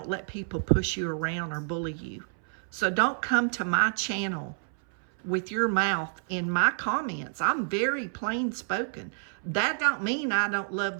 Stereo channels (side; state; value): left; silent; 59 dB below the other